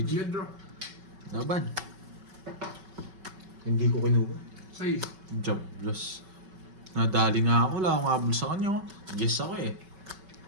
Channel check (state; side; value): late; left; 5.3 ms